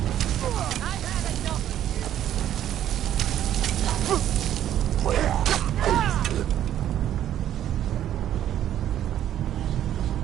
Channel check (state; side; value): quieter; left; 11.3 dB